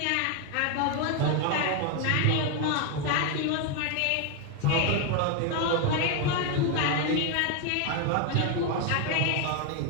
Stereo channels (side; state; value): both; different; correlation 0.01